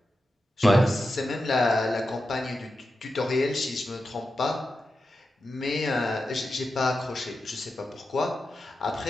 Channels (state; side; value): normal; both; correlation 0.90